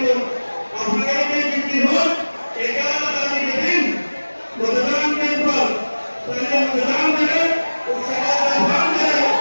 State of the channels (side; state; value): both; inverted; correlation -1.00